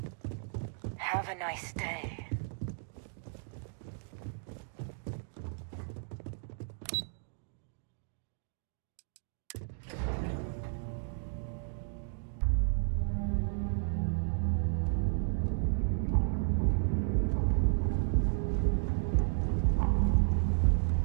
Have a nice day.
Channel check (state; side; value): silent; left; digital silence